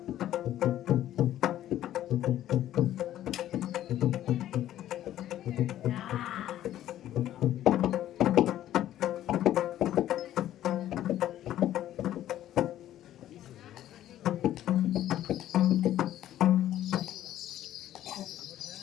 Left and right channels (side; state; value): right; quieter; 12.6 dB